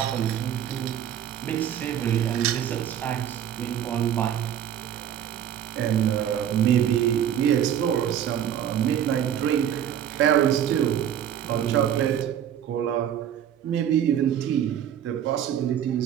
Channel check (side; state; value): left; quieter; 9.9 dB